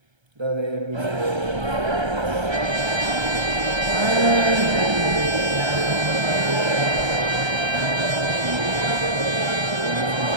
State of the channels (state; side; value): late; left; 1.3 ms